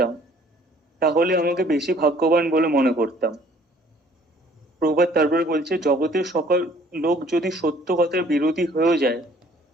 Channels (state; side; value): normal; both; correlation 0.57